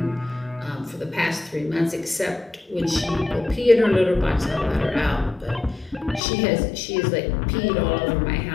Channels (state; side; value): drops out; right; at 6.2 s